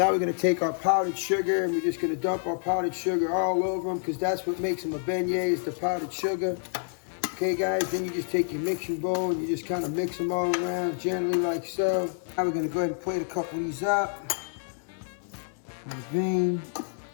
we're gonna take our powdered sugar and we're just gonna dump our powdered sugar all over them because that's what makes them a beignet, is the powdered sugar. Okay, guys, then you just take your mixing bowl and you just kind of mix them all around gently like so. Now we're gonna go ahead and plate a couple of these up. Vein.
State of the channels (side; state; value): right; silent; 59 dB below the other